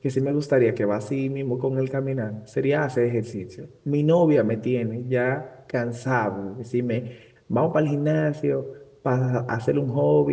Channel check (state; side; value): identical; both; correlation 1.00